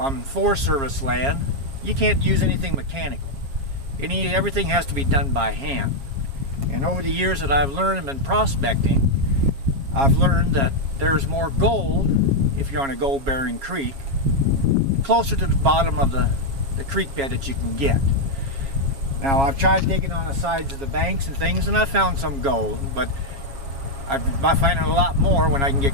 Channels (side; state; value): left; late; 7.3 ms